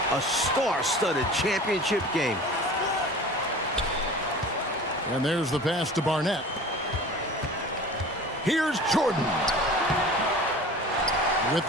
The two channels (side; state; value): both; normal; correlation 0.40